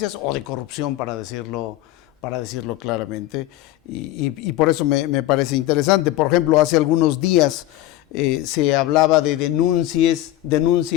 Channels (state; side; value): quieter; right; 15.0 dB